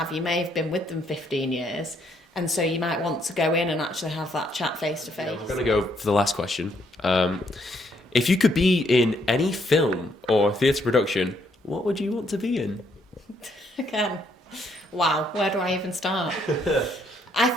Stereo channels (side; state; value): both; normal; correlation 0.71